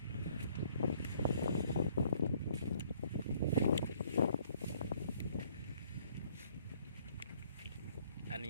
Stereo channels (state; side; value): inverted; both; correlation -0.63